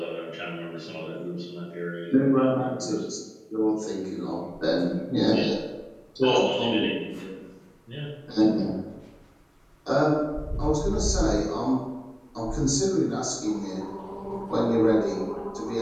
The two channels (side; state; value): both; identical; correlation 1.00